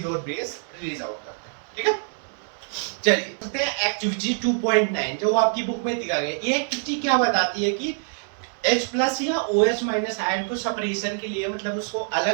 और बेस रिलीज आउट करते हैं, ठीक है। चलिए एक्टिविटी 2.9 जो आपकी बुक में दिखा गया, ये एक्टिविटी क्या बताती है कि H प्लस या OH माइनस आयन को सेपरेशन के लिए, मतलब उसको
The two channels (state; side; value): silent; left; 62 dB below the other